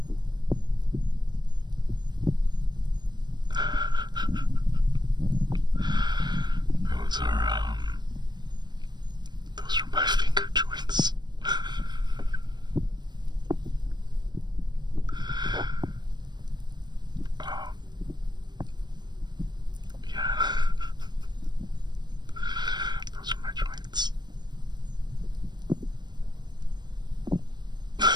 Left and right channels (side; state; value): left; late; 0.21 ms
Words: Those are my finger joints. Yeah. Those are my joints.